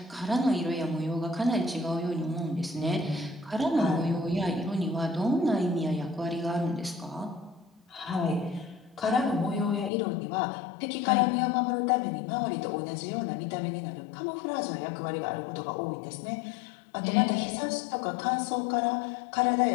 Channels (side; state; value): right; drops out; at 9.9 s